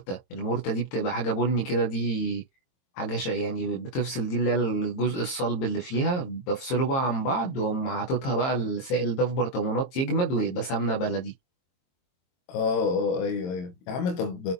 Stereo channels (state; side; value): late; right; 22 ms